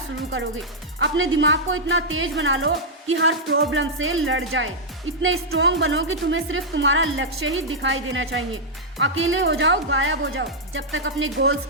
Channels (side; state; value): both; normal; correlation -0.07